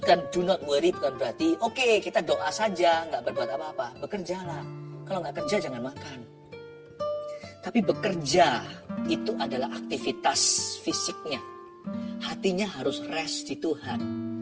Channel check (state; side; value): identical; both; correlation 1.00